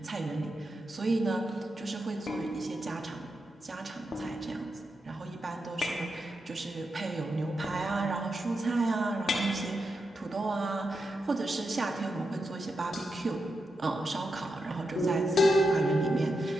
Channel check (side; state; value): both; normal; correlation 0.86